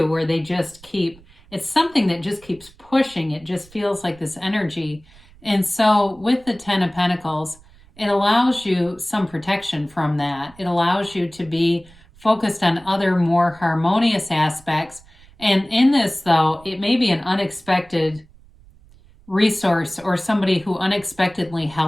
where they just it's something that just keeps pushing. It just feels like this energy. And so with the Ten of Pentacles, it allows you some protection from that. It allows you to be focused on other more harmonious aspects. And in this, though, it may be an unexpected resource or somebody who unexpectedly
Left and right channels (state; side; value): noise; right; rumble, 26 dB below the sound